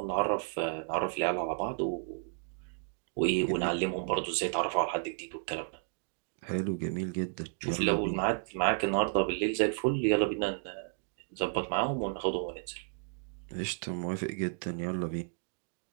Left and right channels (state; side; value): silent; left; 56 dB below the other